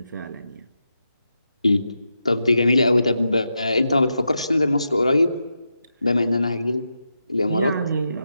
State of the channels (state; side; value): inverted; both; correlation -0.87